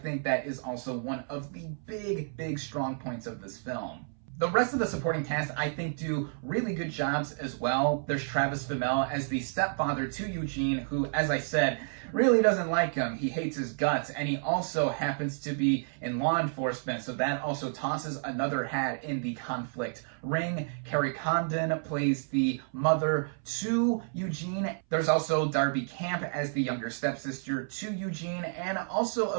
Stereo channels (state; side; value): silent; left; 57 dB below the other